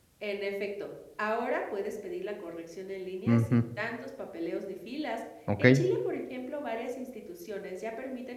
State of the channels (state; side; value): identical; both; correlation 1.00